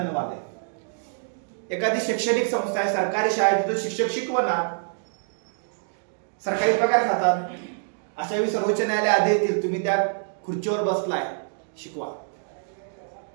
झालंय. एखादी शैक्षणिक संस्था आहे, सरकारी शाळेत, तिथं शिक्षक शिकवणार, सरकारी पगार खातात. अशा वेळी सर्वोच्च न्यायालय आदेश देईल, तुम्ही त्या खुर्चीवर बसलाय, शिकवा.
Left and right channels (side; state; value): left; silent; digital silence